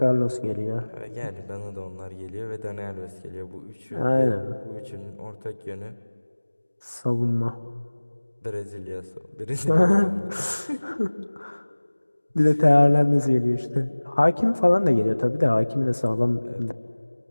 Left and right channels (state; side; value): inverted; both; correlation -1.00